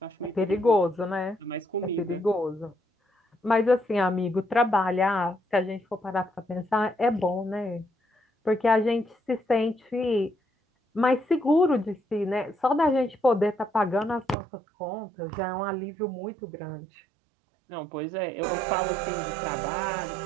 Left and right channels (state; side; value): drops out; left; at 14.4 s